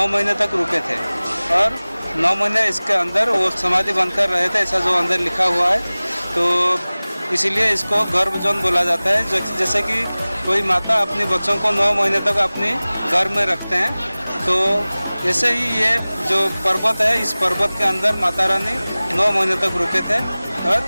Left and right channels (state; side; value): inverted; both; correlation -0.99